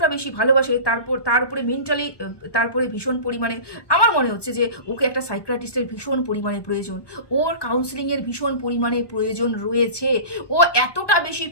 বেশি ভালোবাসে, তার উপরে মেন্টালি তারপরে ভীষণ পরিমাণে আমার মনে হচ্ছে যে ওকে একটা সাইকিয়াট্রিস্টের ভীষণ পরিমাণে প্রয়োজন, ওর কাউন্সিলিংয়ের ভীষণ পরিমাণে প্রয়োজন রয়েছে। ও এতটা বেশি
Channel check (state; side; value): late; right; 1.2 ms